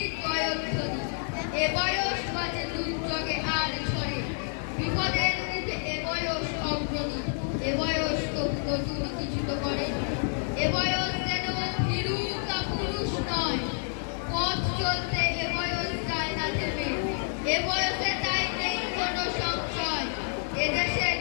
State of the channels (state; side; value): silent; right; 59 dB below the other